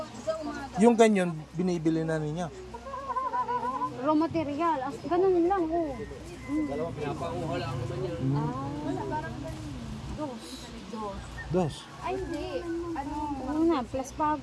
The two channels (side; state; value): both; identical; correlation 1.00